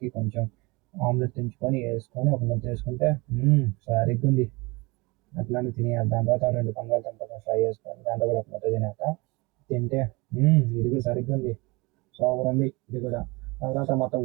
కొంచెం ఆమ్లెట్ తెంచుకొని వేసుకొని ఒక ముద్ద వేసుకుంటే సరిగ్గా ఉంది. అట్లానే తినేయాలి. దాని తర్వాత రెండు బంగాళదుంపలు ఫ్రై చేసుకొని దాంట్లో కూడా ఒక ముద్ద తింటే ఇది కూడా సరిగ్గా ఉంది. సూపర్ ఉంది ఇది కూడా. తర్వాత మొత్తం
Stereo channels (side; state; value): left; quieter; 25.5 dB